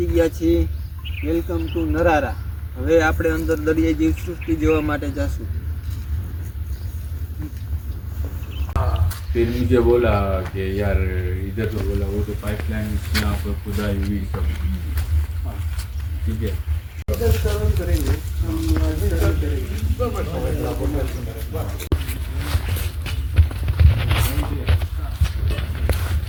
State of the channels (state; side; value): identical; both; correlation 1.00